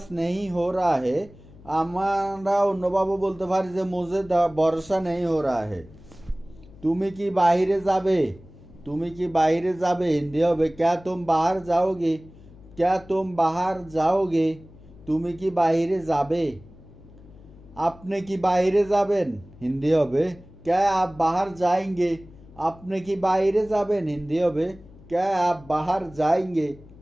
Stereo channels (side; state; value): left; noise; hum, 22 dB below the sound